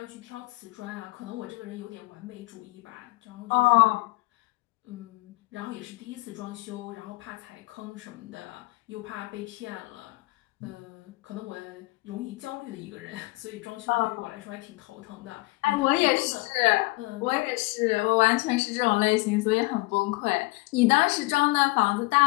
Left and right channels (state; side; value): quieter; right; 23.6 dB